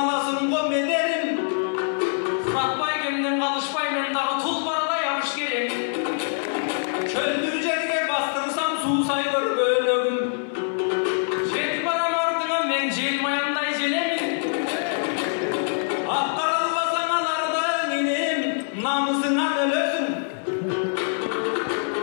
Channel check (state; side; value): silent; right; 62 dB below the other